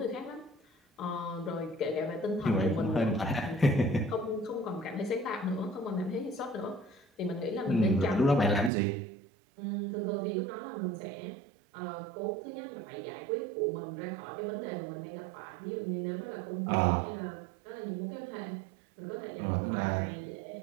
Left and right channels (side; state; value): left; drops out; at 8.7 s